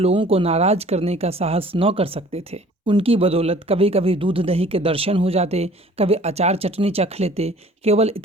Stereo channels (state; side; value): normal; both; correlation 0.51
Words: को नाराज करने का साहस न कर सकते थे। उनकी बदौलत कभी कभी दूध दही के दर्शन हो जाते, कभी अचार चटनी चख लेते। केवल